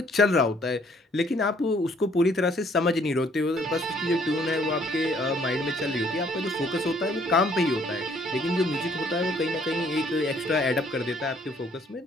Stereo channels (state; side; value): normal; both; correlation 0.63